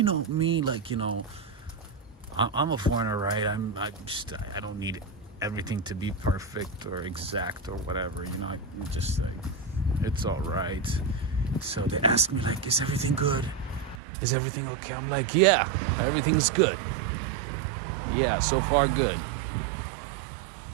know, me, like, you know, I'm a foreigner, right? I don't need everything to be perfect or exact or whatever, you know. I'm just like, it's all right. So they ask me, like, is everything good? Is everything okay? I'm like, yeah, everything's good. Yeah, so far good.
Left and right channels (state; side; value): drops out; left; at 14.0 s